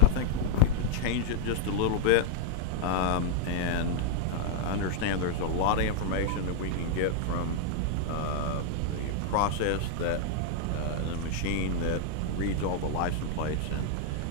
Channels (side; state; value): both; different; correlation 0.00